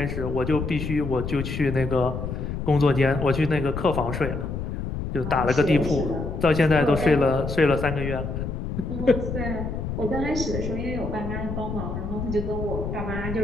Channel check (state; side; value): noise; left; rumble, 4 dB below the sound